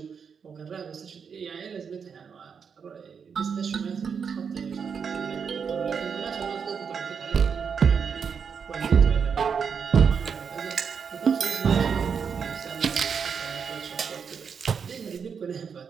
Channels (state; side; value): quieter; left; 6.5 dB